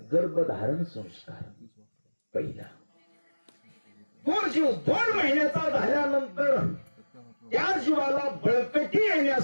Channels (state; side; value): inverted; both; correlation -1.00